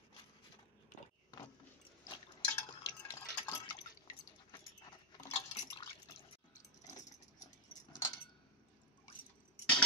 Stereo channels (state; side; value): normal; both; correlation -0.01